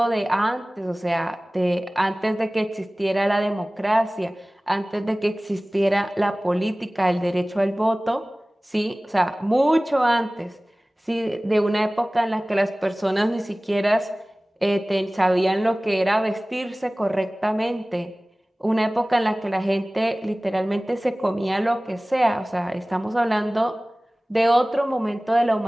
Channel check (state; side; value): normal; both; correlation 0.98